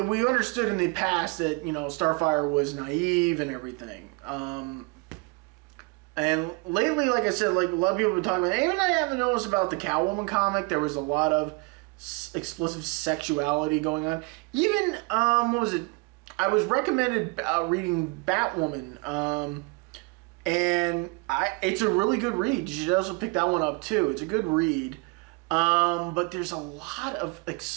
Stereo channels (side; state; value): left; quieter; 28.7 dB